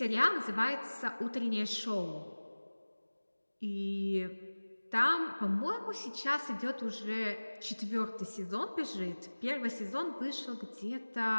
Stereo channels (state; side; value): inverted; both; correlation -1.00